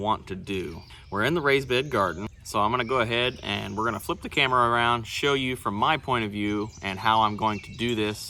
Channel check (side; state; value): both; identical; correlation 1.00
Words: to do. We're in the raised bed garden, so I'm going to go ahead and we're going to flip the camera around, show you from my point of view and how I'm going to do